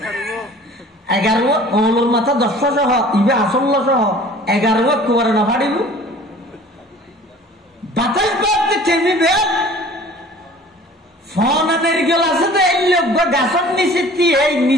11 ওলোর মাথা 10 সহ ইবে আসল্ল সহ 11 কোবরা না ফাড়িব বাতাস বাদতে টেমিবে ফোন নারকেল আছে তো এই লোক গাছের নিচে এই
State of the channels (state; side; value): normal; both; correlation 0.47